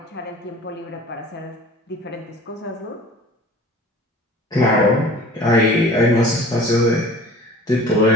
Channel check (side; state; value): both; normal; correlation 0.44